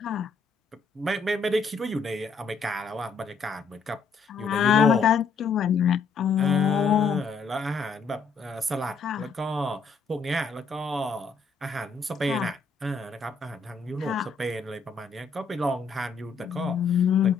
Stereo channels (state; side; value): quieter; right; 4.7 dB